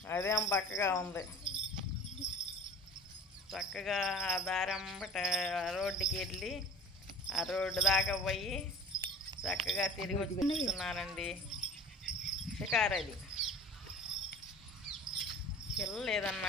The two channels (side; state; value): both; normal; correlation 0.40